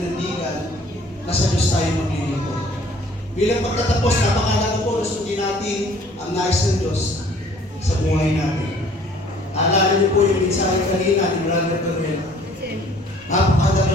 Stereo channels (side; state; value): both; normal; correlation 0.55